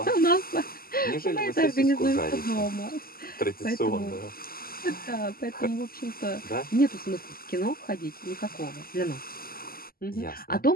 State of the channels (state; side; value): late; right; 0.43 ms